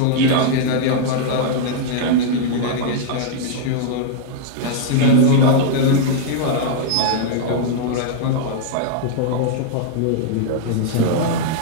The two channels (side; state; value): both; different; correlation -0.01